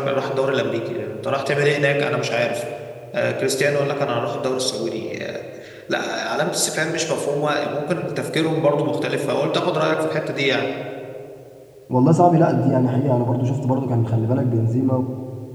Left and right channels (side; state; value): both; identical; correlation 1.00